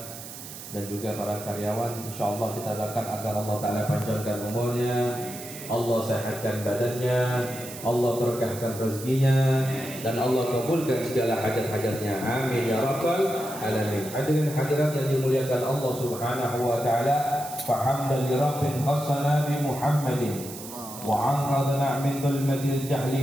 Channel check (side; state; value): right; noise; hiss, 12 dB below the sound